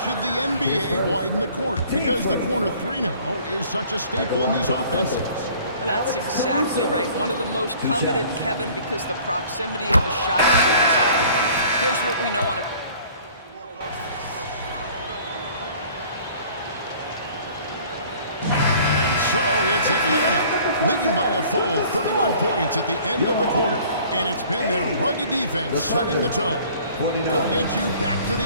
the NBA widen the court? Because the corner three now is such a staple in these offenses. That's exactly right. One of the most coveted, Kevin, because the proximity of the shot is so desirable. Here's what we know on a... And so it's Atlanta, leading by a full 31 points at the end of the quarter. And it's been their rugged defense setting the tone. We'll get you back to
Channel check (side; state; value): both; inverted; correlation -0.51